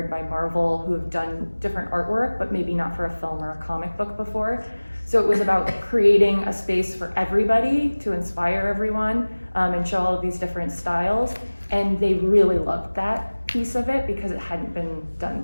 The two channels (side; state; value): both; inverted; correlation -1.00